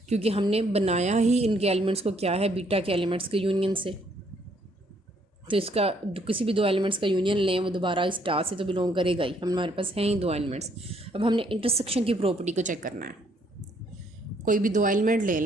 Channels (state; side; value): normal; both; correlation 0.67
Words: क्योंकि हमने बनाया ही इनके एलिमेंट्स को क्या है, बीटा के एलिमेंट्स के यूनियन से। तो इसका किसी भी दो एलिमेंट्स का यूनियन लें, वो दोबारा इस टा से तो बिलोंग करेगा ही। हमारे पास हैं ही दो एलिमेंट्स। अब हमने इंटरसेक्शन की प्रॉपर्टी को चेक करना है। कोई भी दो एलिमेंट ले